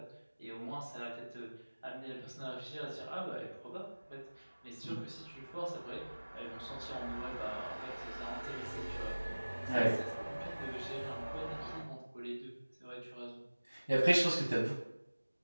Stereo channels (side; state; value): both; inverted; correlation -1.00